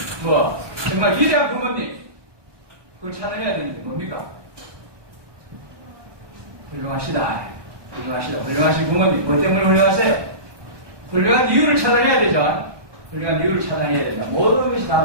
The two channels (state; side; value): late; left; 1.2 ms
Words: 정말 위대한 부모님, 그걸 찾아내야 되는 게 뭡니까? 훌륭하시다. 훌륭하신 부모님. 뭐 때문에 훌륭하세요? 훌륭한 이유를 찾아내야 되죠. 훌륭한 이유를 찾아내야 된다. 모든 것이 다